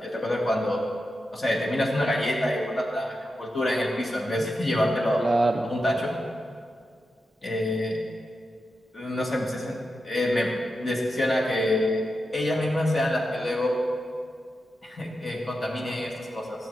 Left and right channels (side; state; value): both; normal; correlation 0.89